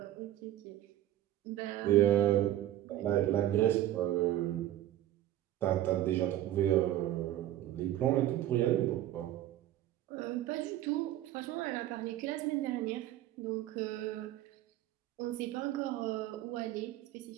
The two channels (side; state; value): left; quieter; 13.3 dB